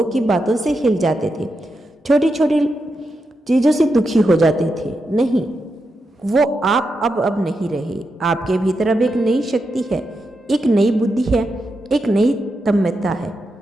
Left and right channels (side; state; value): both; normal; correlation 0.86